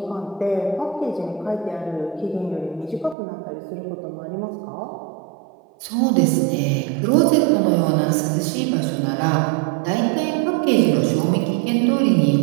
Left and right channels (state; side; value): drops out; left; at 3.2 s